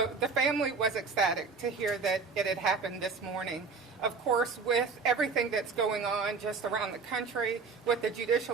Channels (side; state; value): left; quieter; 4.8 dB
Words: the family was ecstatic to hear that it had happened this morning. Of course, with everything that's going on just around the country, with the